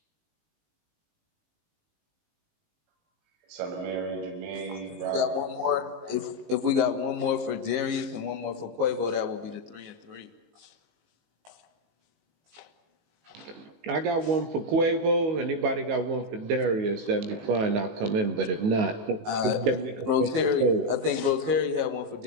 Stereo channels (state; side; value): late; left; 19 ms